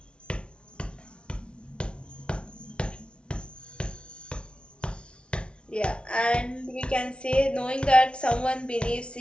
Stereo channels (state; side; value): late; right; 0.058 ms